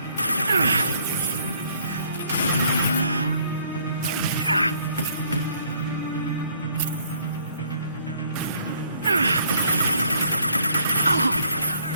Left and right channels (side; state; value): both; inverted; correlation -0.64